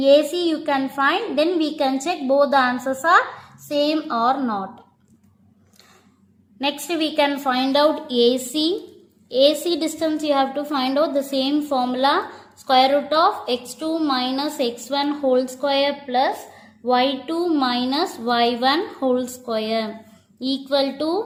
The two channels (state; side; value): identical; both; correlation 1.00